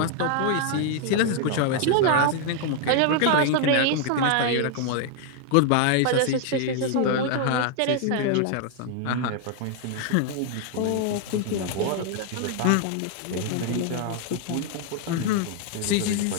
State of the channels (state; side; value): different; both; correlation 0.00